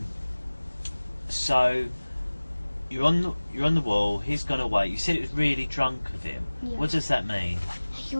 So you're on the wall. He's gone away. You said it was really drunk of him. Yeah. What does that mean? He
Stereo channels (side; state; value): both; inverted; correlation -1.00